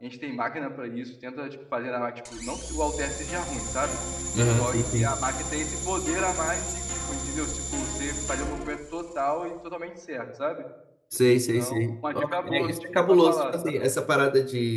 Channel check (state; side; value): identical; both; correlation 1.00